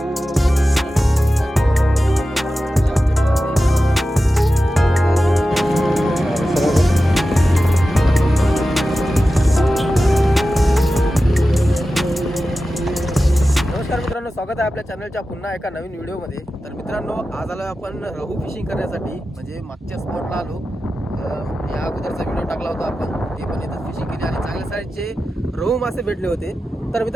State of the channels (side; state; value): both; normal; correlation 0.93